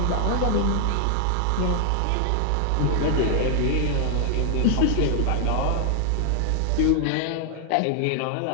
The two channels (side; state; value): both; different; correlation 0.00